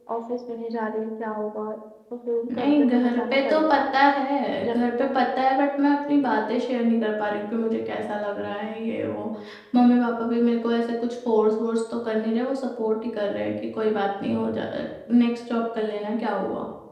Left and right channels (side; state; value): both; identical; correlation 1.00